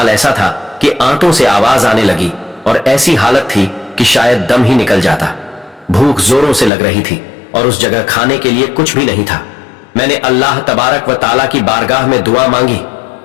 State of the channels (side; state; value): right; drops out; at 6.7 s